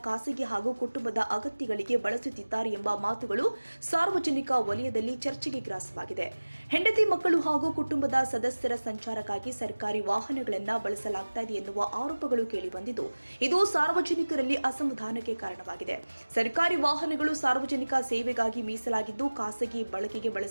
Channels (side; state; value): both; inverted; correlation -1.00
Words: ಖಾಸಗಿ ಹಾಗೂ ಕುಟುಂಬದ ಅಗತ್ಯಗಳಿಗೆ ಬಳಸುತ್ತಿದ್ದಾರೆ ಎಂಬ ಮಾತುಗಳು ಸಾರ್ವಜನಿಕ ವಲಯದಲ್ಲಿ ಚರ್ಚೆಗೆ ಗ್ರಾಸವಾಗಿದೆ. ಹೆಂಡತಿ ಮಕ್ಕಳು ಹಾಗೂ ಕುಟುಂಬದ ಸದಸ್ಯರ ಸಂಚಾರಕ್ಕಾಗಿ ಸರ್ಕಾರಿ ವಾಹನಗಳನ್ನು ಬಳಸಲಾಗ್ತಾ ಇದೆ ಎನ್ನುವ ಆರೋಪಗಳು ಕೇಳಿಬಂದಿದ್ದು, ಇದು ಸಾರ್ವಜನಿಕರಲ್ಲಿ ಅಸಮಾಧಾನಕ್ಕೆ ಕಾರಣವಾಗಿದೆ. ಸರ್ಕಾರಿ ವಾಹನಗಳು ಸಾರ್ವಜನಿಕ ಸೇವೆಗಾಗಿ ಮೀಸಲಾಗಿದ್ದು, ಖಾಸಗಿ ಬಳಕೆಗೆ